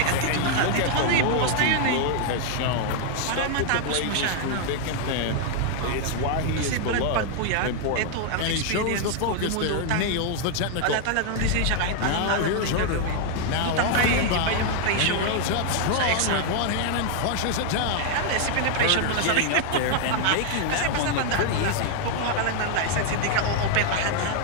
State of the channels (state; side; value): different; both; correlation 0.00